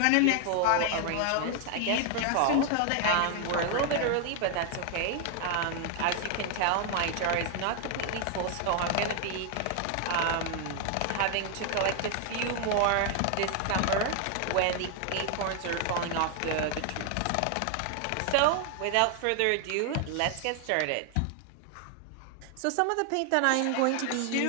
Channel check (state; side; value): different; both; correlation 0.00